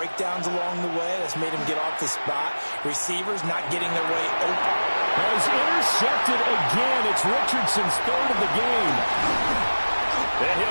along the way. That's made him get off the spot. Receivers not getting their way open. Well, he's intercepted again. It's Richardson's third of the game. And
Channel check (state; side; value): inverted; both; correlation -1.00